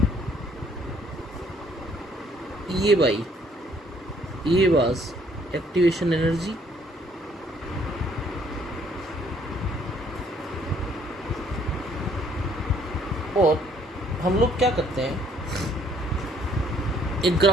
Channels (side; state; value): both; normal; correlation 0.63